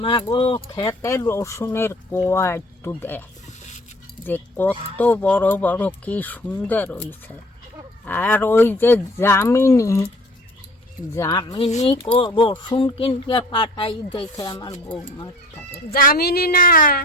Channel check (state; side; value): normal; both; correlation 0.48